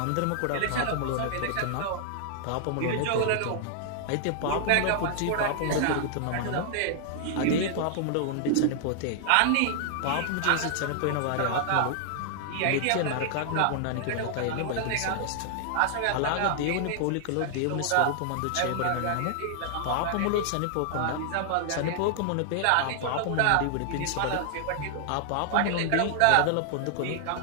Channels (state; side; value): different; both; correlation -0.01